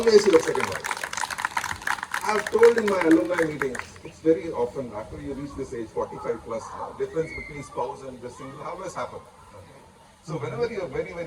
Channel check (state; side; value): identical; both; correlation 1.00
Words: your second home. I've told in my alumni meetings, it's very often, after you reach this age, 45 plus, difference between spouse and the single always happen. So whenever you're very,